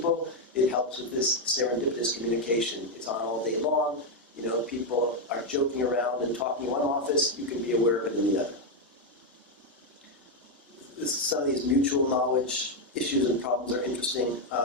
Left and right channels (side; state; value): both; normal; correlation 0.03